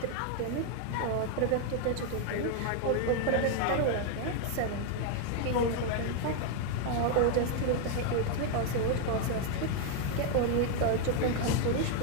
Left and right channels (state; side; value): different; both; correlation 0.01